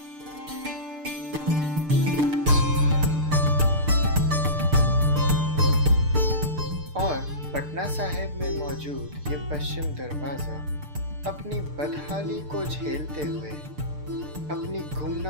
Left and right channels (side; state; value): left; late; 6.7 ms